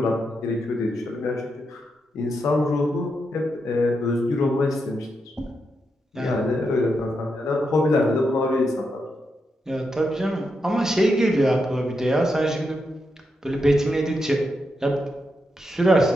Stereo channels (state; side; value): normal; both; correlation 0.84